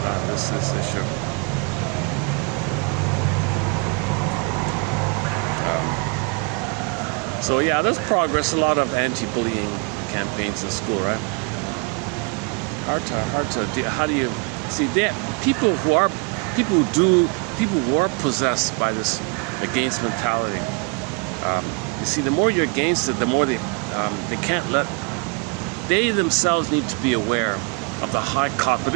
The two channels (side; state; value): left; quieter; 32.6 dB